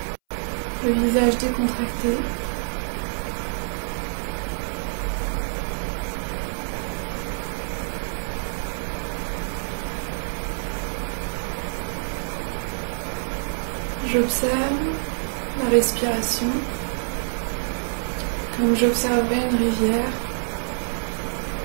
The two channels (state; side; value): silent; left; 61 dB below the other